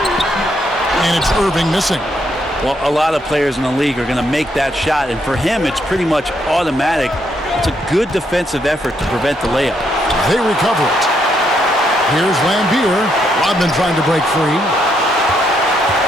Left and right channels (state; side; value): normal; both; correlation 0.75